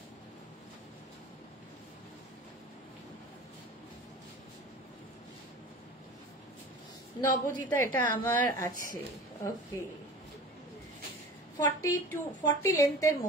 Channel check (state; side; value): normal; both; correlation 0.38